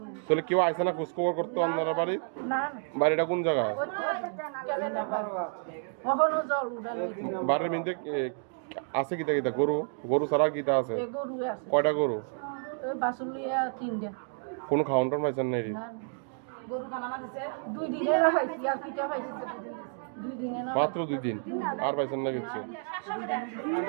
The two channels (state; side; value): silent; left; 58 dB below the other